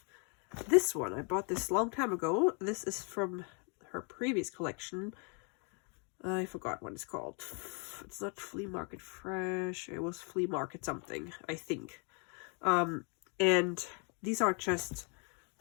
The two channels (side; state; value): right; quieter; 37.5 dB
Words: this one. I bought this a long time ago. This is from her previous collection. I forgot what it's called. It's not Flea Market Fresh. It was Flea Market something, I think. And these are just